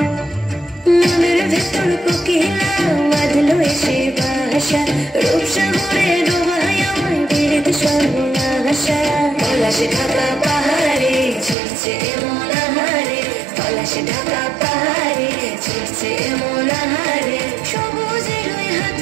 মনের ভেতর কোকিলা বাঁধলো এসে বাসা রূপসাগরে ডোবায় আমায় পেরেতে সর্বনাশা পলাশে ঢাকা পাহাড়ে ছিড়ছে এমন আহারে পলাশে ঢাকা পাহাড়ে ছিড়ছে এমন আহারে সবুজের ওই হাত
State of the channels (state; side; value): drops out; left; at 11.6 s